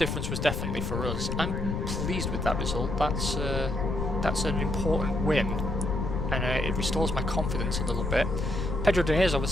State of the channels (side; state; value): left; noise; rumble, 2 dB below the sound